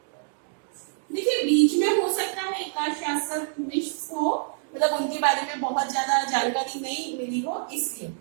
देखिए, बीच में हो सकता है एक आध शासक मिस हो, मतलब उनके बारे में बहुत ज्यादा जानकारी नहीं मिली हो, इसलिए।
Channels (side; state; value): left; silent; digital silence